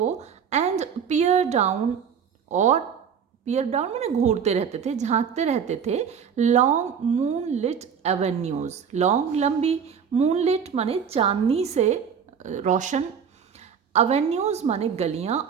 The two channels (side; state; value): left; quieter; 7.2 dB